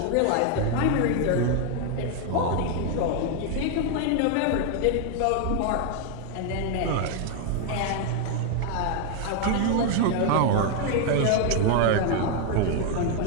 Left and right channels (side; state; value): both; different; correlation 0.01